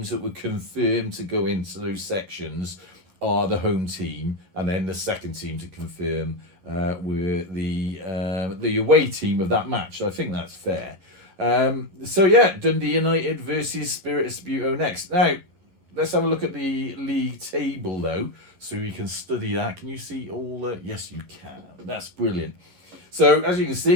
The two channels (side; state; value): left; late; 11 ms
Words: that were confirmed to go into those sections are the home team, and then the second team to confirm were the away team of that match. So I think that's fair. So yeah, Dundee United versus Spirit of Sabuteo next. Now, let's have a look at the league table though, so we can study that. Can you see all the... Yes, you can. That's brilliant. So, as you can